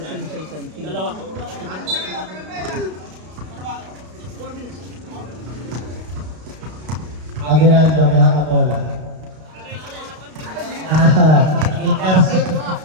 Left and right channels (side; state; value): left; late; 32 ms